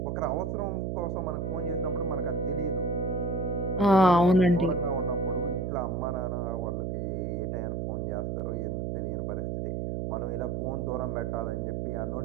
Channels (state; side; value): noise; right; hum, 2 dB below the sound